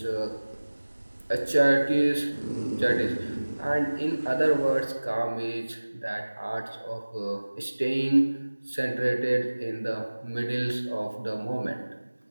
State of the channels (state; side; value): inverted; both; correlation -1.00